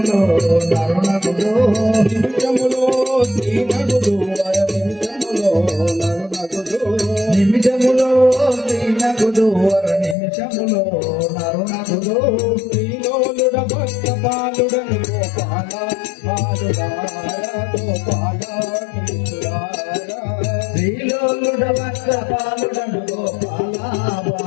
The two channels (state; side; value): drops out; right; at 10.2 s